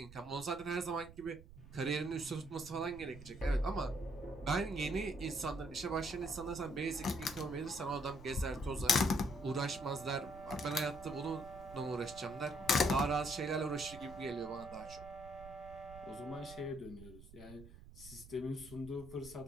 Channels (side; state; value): right; noise; rumble, 17 dB below the sound